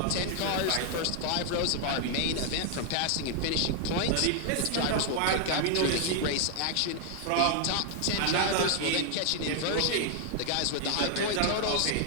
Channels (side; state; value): both; different; correlation 0.00